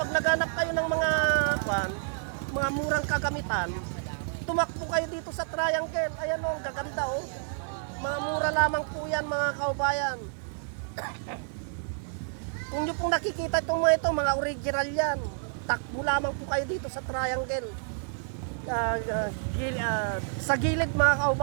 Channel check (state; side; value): silent; left; digital silence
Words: naghanap kayo ng mga murang kagamitan, tumakbo kayo dito sa Triangle. Ayan o, ang gaganda o. Mga mura lamang po yan mga kaubayan. Kung nyo pong nakikita itong mga original yan, takbo lamang po kayo dito sa Triangle. Sa gilid mga